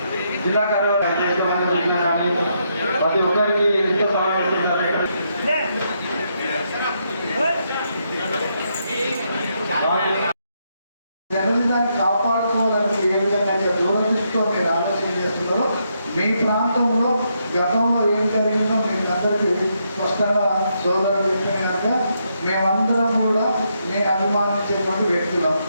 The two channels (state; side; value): inverted; both; correlation -0.78